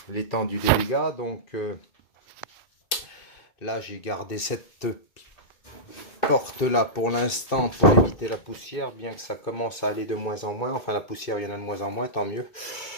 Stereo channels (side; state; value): right; late; 2.6 ms